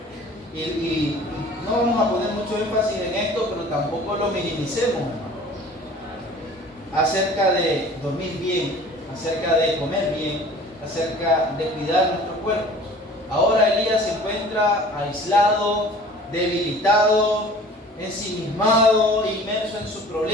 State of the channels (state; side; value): normal; both; correlation 0.46